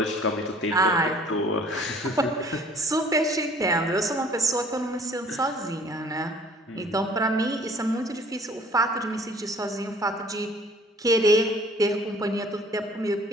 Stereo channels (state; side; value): normal; both; correlation 0.53